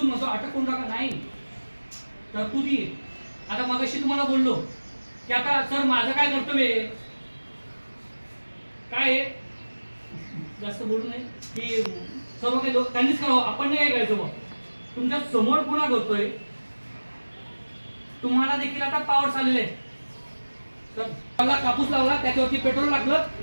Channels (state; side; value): inverted; both; correlation -1.00